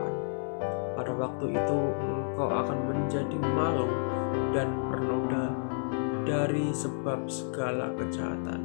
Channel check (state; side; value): silent; right; 57 dB below the other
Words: Pada waktu itu engkau akan menjadi malu dan bernoda dari sebab segala kejahatan.